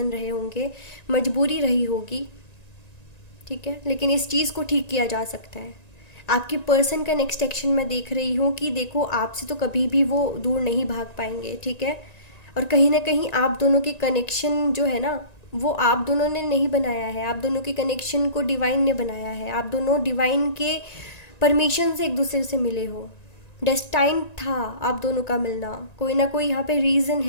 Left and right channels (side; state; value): right; late; 1.9 ms